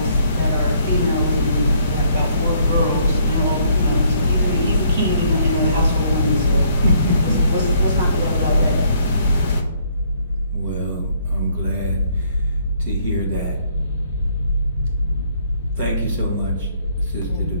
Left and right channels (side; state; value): both; inverted; correlation -0.66